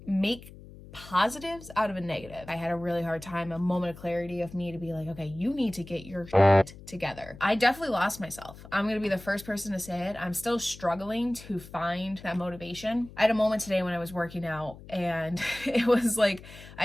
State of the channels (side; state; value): left; noise; hum, 18 dB below the sound